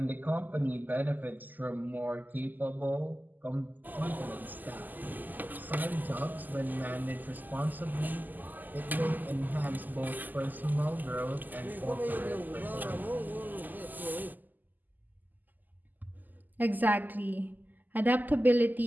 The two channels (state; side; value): late; left; 0.085 ms